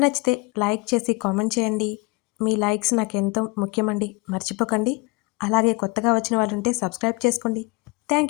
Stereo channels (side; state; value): right; quieter; 25.6 dB